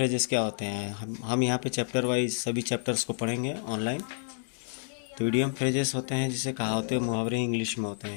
क्या होते हैं, हम यहाँ पे चैप्टर वाइज सभी चैप्टर्स को पढ़ेंगे ऑनलाइन। तो इडियम फ्रेजेस होते हैं जिसे कहावतें मुहावरे इंग्लिश में होते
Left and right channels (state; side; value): silent; right; digital silence